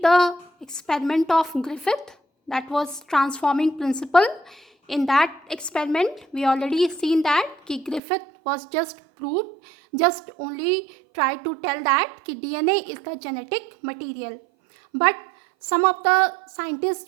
the experiment of Griffith, that was transforming principle. In that experiment, we already seen that कि Griffith was just only try to tell that कि DNA is the genetic material. But some of the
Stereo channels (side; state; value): left; drops out; at 8.0 s